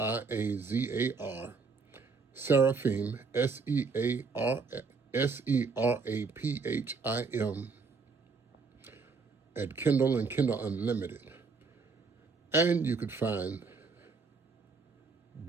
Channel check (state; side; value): quieter; left; 4.7 dB